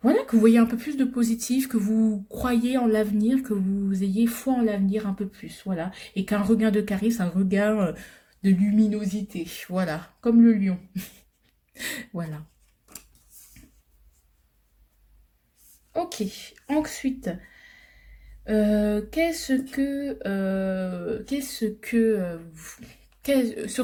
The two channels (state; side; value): identical; both; correlation 1.00